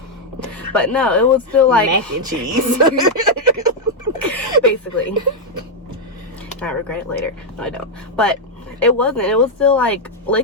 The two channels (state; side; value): normal; both; correlation -0.01